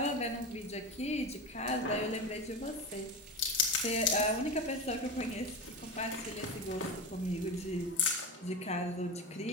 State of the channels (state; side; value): normal; both; correlation 0.22